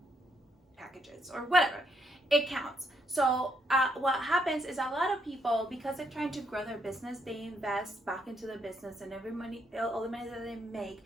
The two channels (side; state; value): both; normal; correlation 0.75